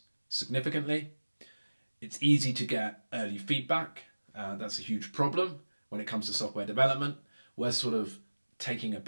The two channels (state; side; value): inverted; both; correlation -1.00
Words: significantly. It's easy to get early feedback. That's a huge problem when it comes to software development. We're sort of taking a